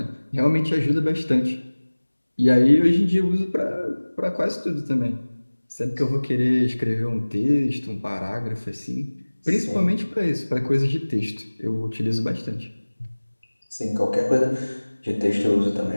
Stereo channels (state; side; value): inverted; both; correlation -1.00